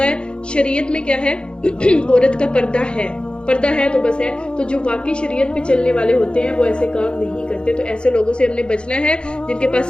ہے. شریعت میں کیا ہے, عورت کا پردہ ہے تو بس ہے. تو جو واقعی شریعت پہ چلنے والے ہوتے ہیں وہ ایسے کام نہیں کرتے. تو ایسے لوگوں سے ہم نے بچنا ہے جن کے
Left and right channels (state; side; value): late; right; 0.053 ms